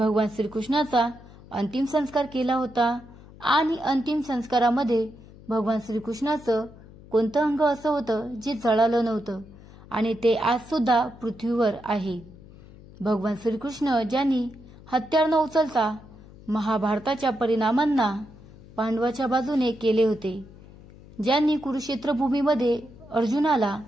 श्रीकृष्णाचा अंतिम संस्कार केला होता आणि अंतिम संस्कारामध्ये भगवान श्रीकृष्णाचं कोणतं अंग असं होतं जे जळालं नव्हतं आणि ते आज सुद्धा पृथ्वीवर आहे? भगवान श्रीकृष्ण ज्यांनी हत्यार न उचलता महाभारताच्या परिणामांना पांडवाच्या बाजूने केले होते, ज्यांनी कुरुक्षेत्र भूमीमध्ये अर्जुनाला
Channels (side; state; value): left; noise; hum, 20 dB below the sound